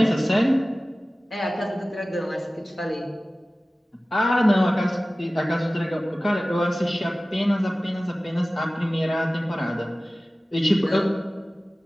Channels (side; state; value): both; normal; correlation 0.97